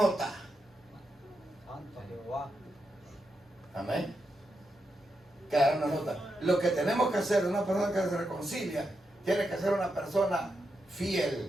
Amén. Quedará una nota. Lo que tenemos que hacer, una persona que se reconcilia, tiene que ser una persona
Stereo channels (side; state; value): both; normal; correlation 0.85